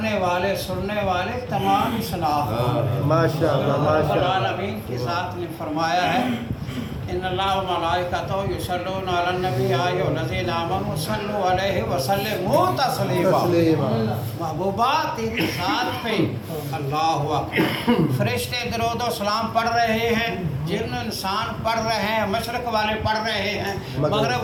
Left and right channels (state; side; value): identical; both; correlation 1.00